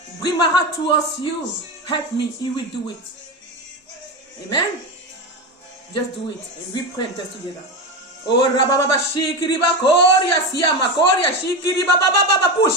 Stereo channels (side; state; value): both; normal; correlation 0.18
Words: Bring my heart towards you. Help me. He will do it. Amen. Just do it. And we pray and test together. Oh, Rababa Shikiriba Koria Siama Koria Shikiriba Baba